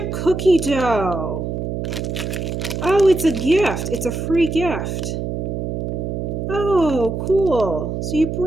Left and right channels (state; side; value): noise; right; hum, 3 dB below the sound